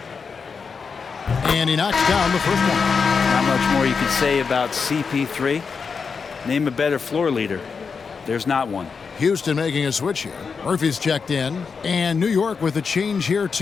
And he knocks down the first one. Not much more you can say about CP3. Name a better floor leader. There's not one. Houston making a switch here. Murphy's checked in. And New York with a change here,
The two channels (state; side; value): quieter; right; 5.5 dB